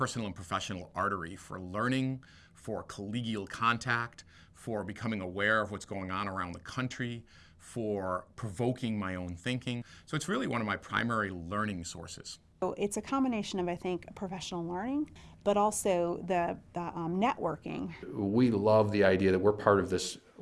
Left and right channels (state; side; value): identical; both; correlation 1.00